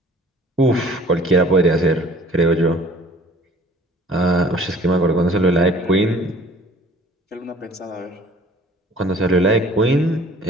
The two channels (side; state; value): both; normal; correlation 0.50